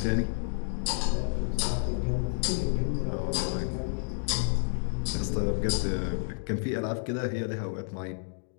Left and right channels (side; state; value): right; silent; digital silence